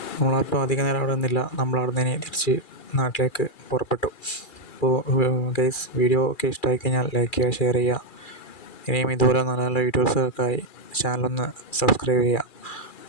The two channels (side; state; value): right; late; 2.4 ms